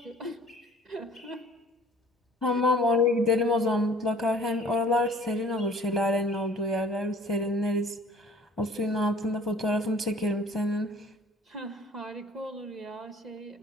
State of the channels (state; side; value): normal; both; correlation 0.51